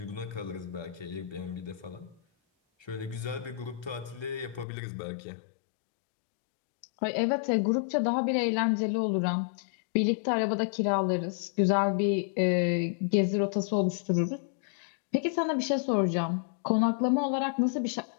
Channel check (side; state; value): right; drops out; at 4.7 s